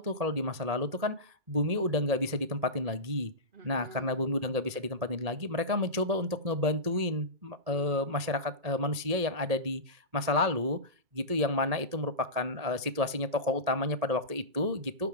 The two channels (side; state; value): left; late; 1.8 ms